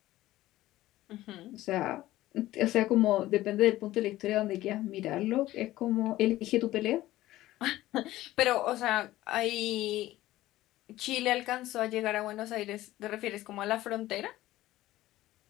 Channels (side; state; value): right; quieter; 15.9 dB